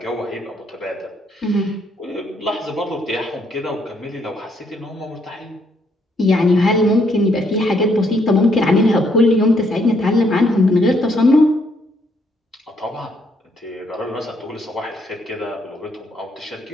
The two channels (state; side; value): normal; both; correlation 0.72